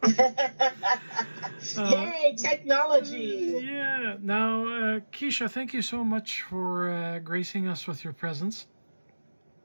uh, Yay, technology! yeah. Now, Quisha, thank you so much for gracing us with your presence.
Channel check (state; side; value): inverted; both; correlation -1.00